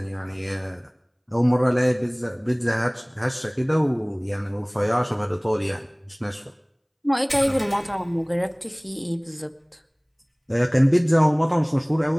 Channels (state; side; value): identical; both; correlation 1.00